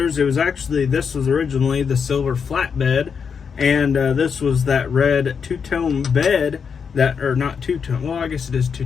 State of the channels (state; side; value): quieter; right; 6.3 dB